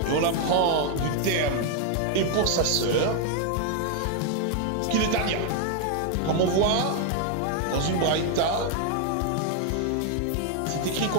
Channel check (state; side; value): different; both; correlation 0.01